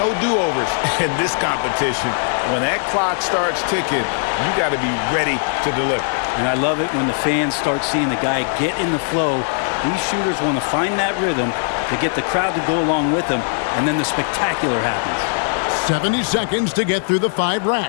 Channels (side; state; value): right; silent; digital silence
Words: do-overs in this competition. When that clock starts ticking, you got to be ready to deliver. And I love it when the fans start seeing the guy get in the flow. These shooters want to find that rhythm to get the crowd to go along with them, and then the spectacular happens. 70 seconds to get through the 5